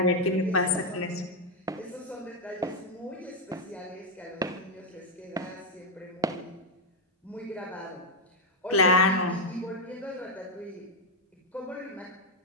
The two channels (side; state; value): both; normal; correlation 0.01